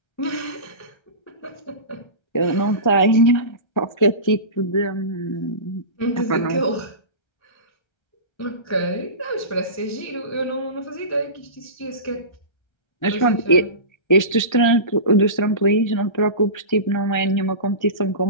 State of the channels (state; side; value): late; right; 1.3 ms